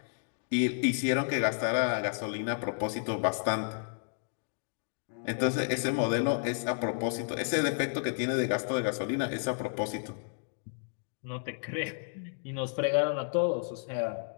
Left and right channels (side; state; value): right; silent; digital silence